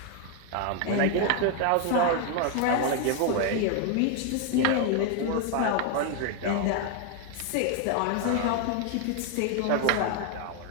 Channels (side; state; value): both; different; correlation 0.01